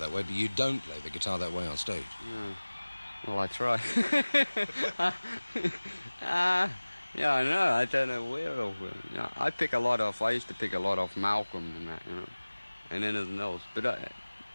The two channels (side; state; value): both; inverted; correlation -1.00